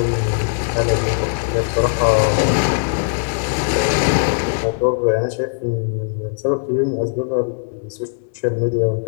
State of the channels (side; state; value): right; silent; digital silence